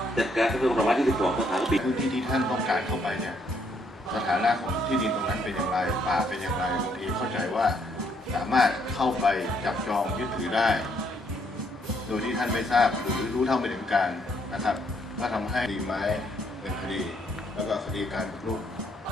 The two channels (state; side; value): normal; both; correlation 0.71